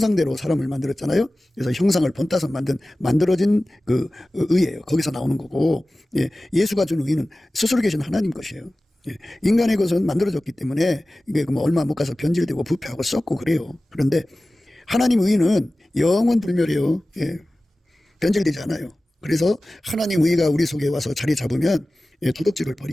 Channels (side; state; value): both; normal; correlation 0.96